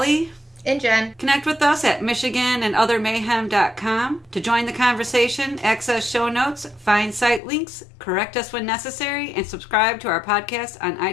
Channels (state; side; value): drops out; right; at 7.4 s